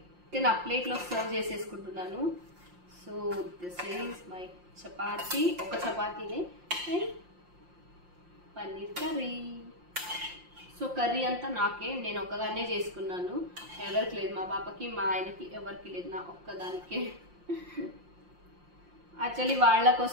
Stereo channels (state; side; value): late; left; 5.7 ms